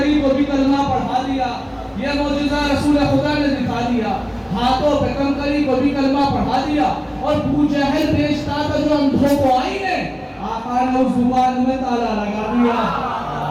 کو بھی کلمہ پڑھا دیا۔ یہ معجزہ رسول خدا نے دکھا دیا، ہاتھوں پہ کنکری کو بھی کلمہ پڑھا دیا۔ اور ابو جہل بیچتا تھا جو اندھوں کو آئینے، آقا نے اس زبان میں تالا لگا دیا۔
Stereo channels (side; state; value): both; identical; correlation 1.00